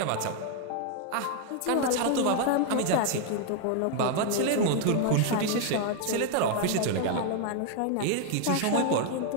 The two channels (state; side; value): different; both; correlation 0.00